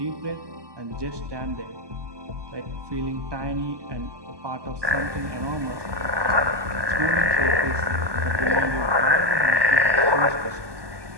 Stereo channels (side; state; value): left; late; 1.2 ms